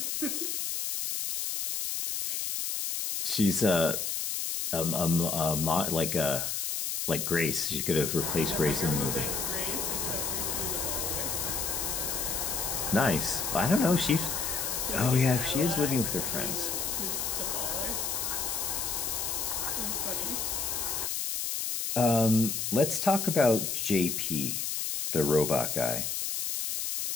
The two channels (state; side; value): noise; left; hiss, 1 dB below the sound